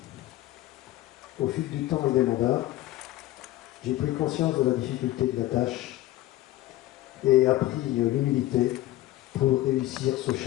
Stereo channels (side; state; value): right; quieter; 15.9 dB